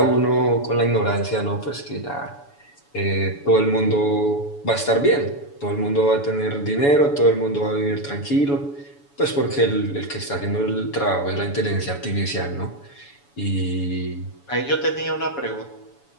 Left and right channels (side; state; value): right; late; 7.0 ms